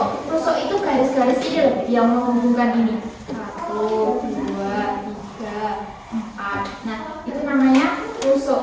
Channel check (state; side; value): identical; both; correlation 1.00